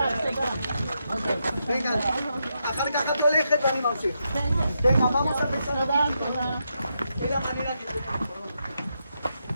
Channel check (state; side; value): inverted; both; correlation -0.83